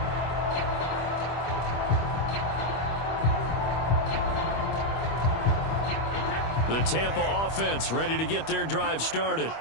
The Tampa offense ready to get their drive started.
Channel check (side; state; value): right; late; 25 ms